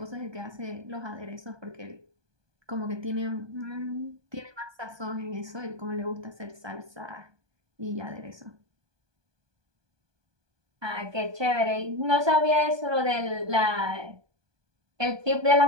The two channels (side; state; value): left; late; 1.2 ms